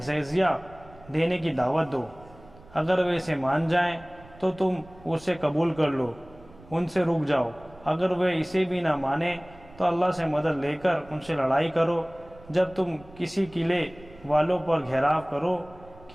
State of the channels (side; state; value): right; noise; rumble, 22 dB below the sound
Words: جزیہ دینے کی دعوت دو، اگر وہ اسے مان جائیں تو تم اسے قبول کر لو، ان سے رک جاؤ، اگر وہ اسے بھی نہ مانیں تو اللہ سے مدد لے کر ان سے لڑائی کرو۔ جب تم کسی قلعے والوں پر گھیراؤ کرو،